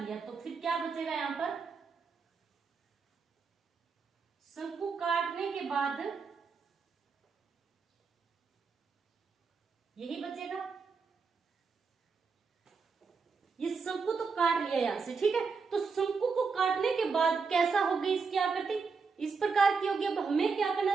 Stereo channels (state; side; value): quieter; left; 5.0 dB